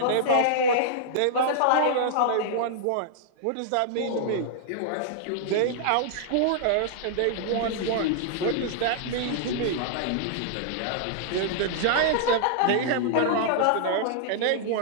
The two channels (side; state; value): both; different; correlation -0.01